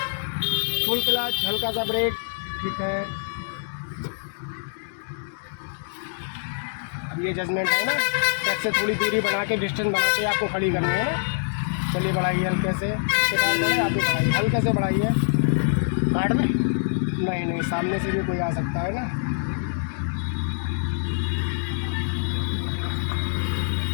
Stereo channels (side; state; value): right; silent; digital silence